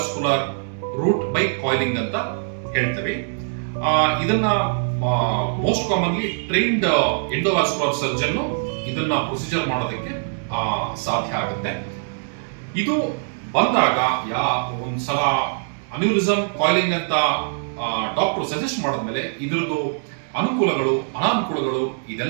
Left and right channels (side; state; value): left; silent; digital silence